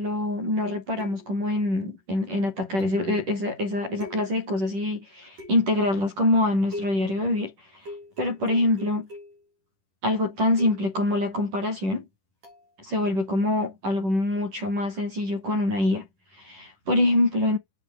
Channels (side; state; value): left; late; 10 ms